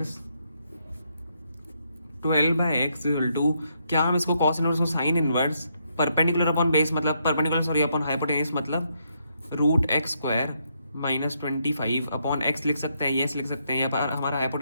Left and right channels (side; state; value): both; inverted; correlation -0.76